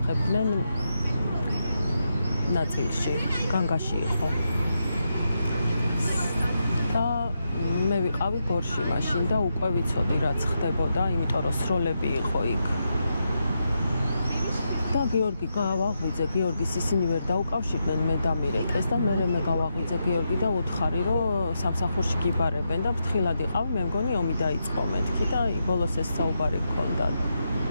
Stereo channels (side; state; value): both; inverted; correlation -0.84